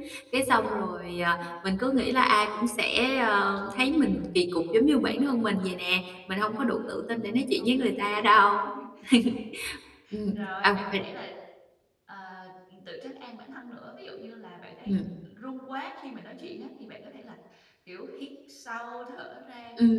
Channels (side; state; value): both; identical; correlation 1.00